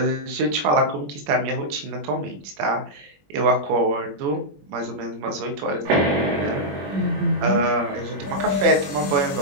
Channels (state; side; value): late; left; 21 ms